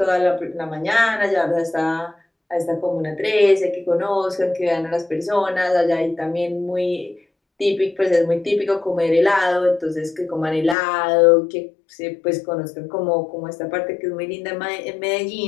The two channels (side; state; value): right; drops out; at 10.8 s